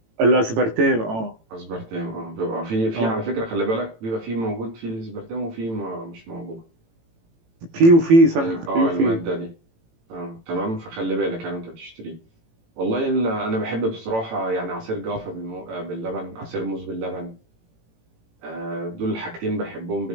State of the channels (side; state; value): left; late; 18 ms